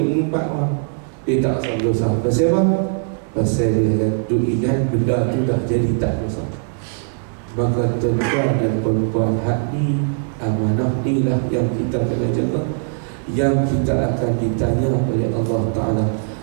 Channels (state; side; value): silent; left; digital silence